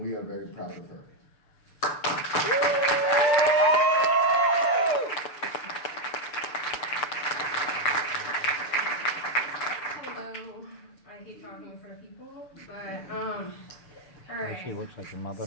we are very proud of her. Hello. I hate talking in front of people, but all right. She looks like your mother.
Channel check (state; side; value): late; right; 6.8 ms